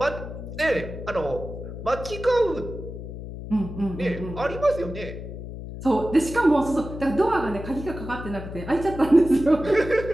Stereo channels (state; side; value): noise; left; hum, 10 dB below the sound